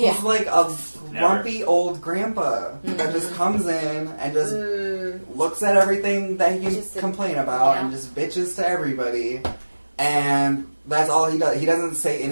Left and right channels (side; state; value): both; inverted; correlation -1.00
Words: he's like a grumpy old grandpa that Mm-hmm. just comes in and just looks at everything that he can Just complain about yeah. and just bitches to everybody. And that's all he does. He doesn't say